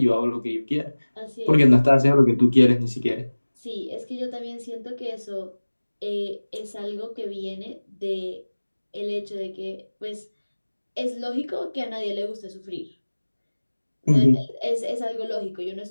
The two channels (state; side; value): inverted; both; correlation -1.00